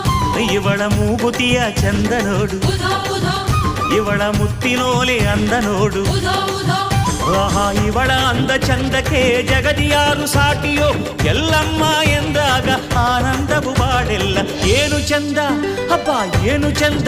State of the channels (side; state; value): both; identical; correlation 1.00